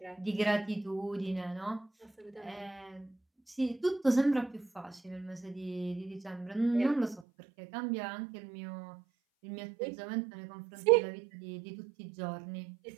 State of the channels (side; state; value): left; drops out; at 7.2 s